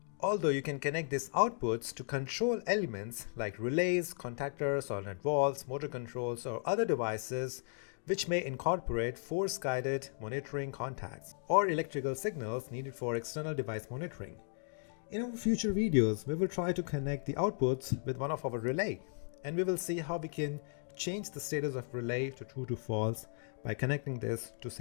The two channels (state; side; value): silent; right; 54 dB below the other